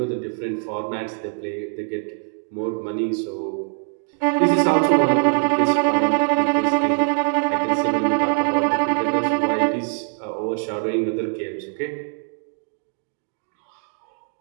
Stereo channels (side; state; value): left; silent; 56 dB below the other